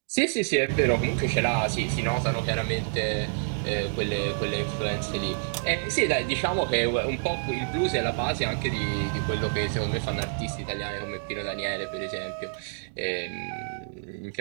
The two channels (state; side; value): silent; left; digital silence